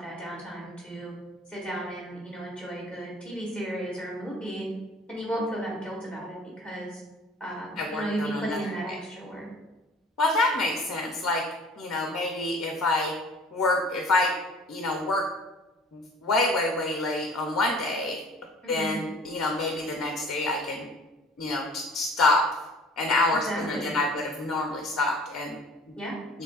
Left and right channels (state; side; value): normal; both; correlation 0.48